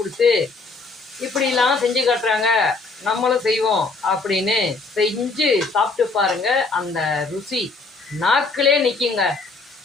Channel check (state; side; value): quieter; right; 3.8 dB